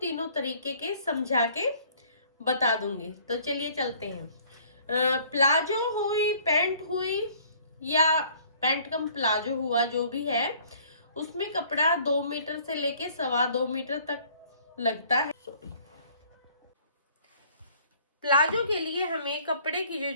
तरीके के समझा के बता दूंगी। तो चलिए चलते हैं। प्लाजो हुई, पैंट हुई या पैंट कम प्लाजो हुआ, जो भी है, उसमें कपड़ा 2 मीटर से लेके 2.25 मीटर तक लगता है। प्लाजो के लिए हमें कपड़े की जो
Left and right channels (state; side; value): inverted; both; correlation -0.57